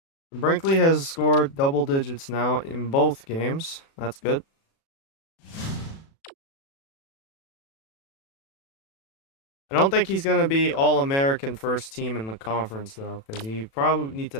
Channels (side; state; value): right; late; 36 ms